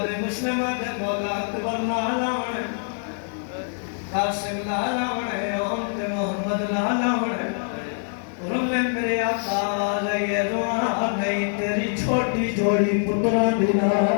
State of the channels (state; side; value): silent; right; digital silence